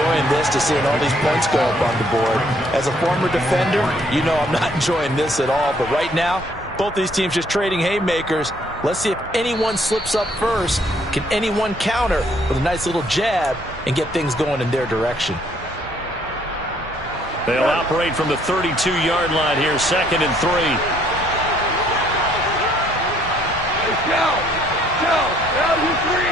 this to seeing all these points go up on the board. As a former defender, you know I'm not enjoying this at all, but right now, both these teams just trading haymakers. Let's see if anyone slips up first. Can anyone counter with a nice little jab and get things going in their direction? They'll operate from the 32-yard line here, 2nd and 3.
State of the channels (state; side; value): normal; both; correlation 0.65